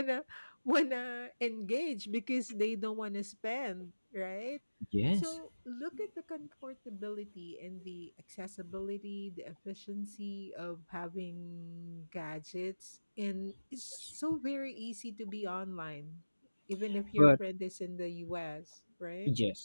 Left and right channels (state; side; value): inverted; both; correlation -1.00